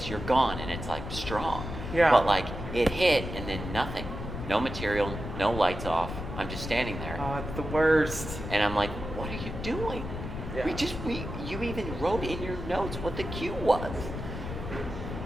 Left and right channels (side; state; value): left; noise; rumble, 7 dB below the sound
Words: you're gone, and it's like strong. Yeah. But like, it hit, and then nothing. No material, no lights off. I'm just standing there. Oh, it's the worst. And I'm like, what are you doing? Yeah. You even wrote in your notes what the cue was.